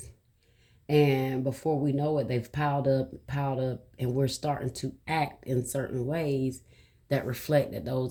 And before we know it, they've piled up, and we're starting to act in certain ways that reflect that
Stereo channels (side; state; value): both; identical; correlation 1.00